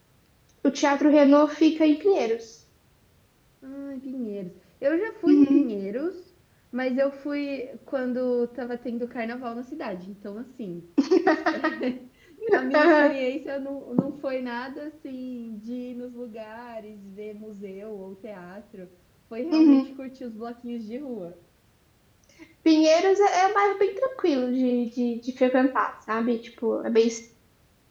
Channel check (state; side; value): identical; both; correlation 1.00